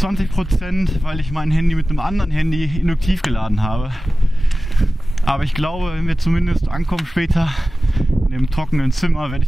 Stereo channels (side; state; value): both; normal; correlation 0.96